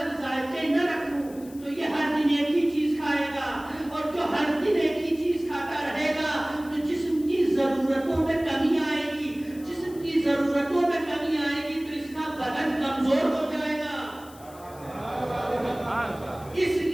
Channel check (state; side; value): noise; left; hiss, 22 dB below the sound